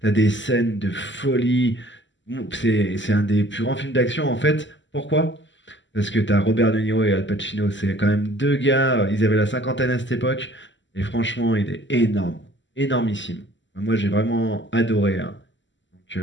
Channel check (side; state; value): right; late; 0.54 ms